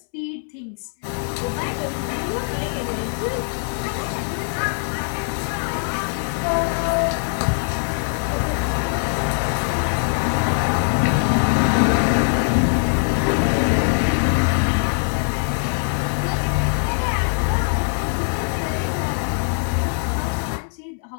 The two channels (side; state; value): right; silent; 64 dB below the other